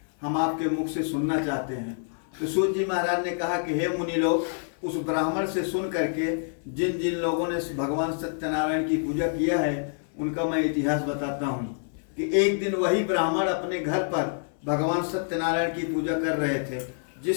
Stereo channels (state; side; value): silent; right; 60 dB below the other